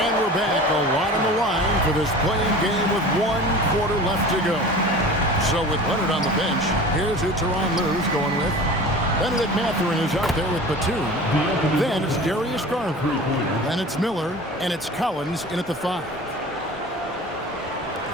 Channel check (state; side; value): normal; both; correlation 0.38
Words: we're back, a lot on the line for this playing game with 1 quarter left to go. So with Leonard on the bench, here's who Tyronn Lue's going with. Benedict Mathurin is out there with Batum. Then it's Darius Garland. Then it's Miller, and it's Collins in at the 5.